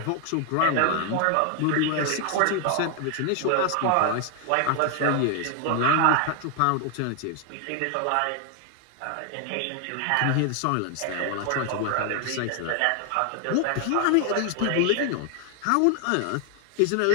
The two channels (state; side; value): different; both; correlation 0.00